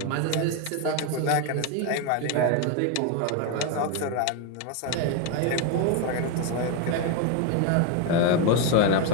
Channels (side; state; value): both; different; correlation 0.02